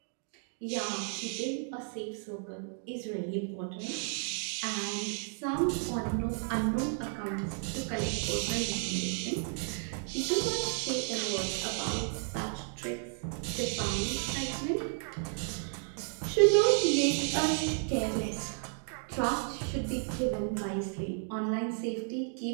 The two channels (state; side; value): silent; left; 56 dB below the other